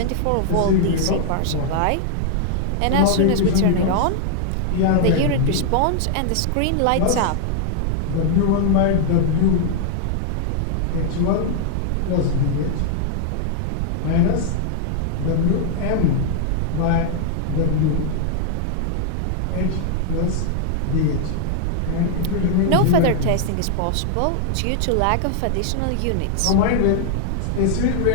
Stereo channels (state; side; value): different; both; correlation 0.00